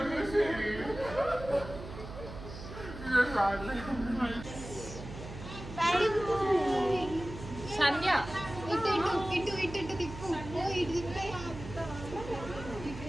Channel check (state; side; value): noise; right; hum, 11 dB below the sound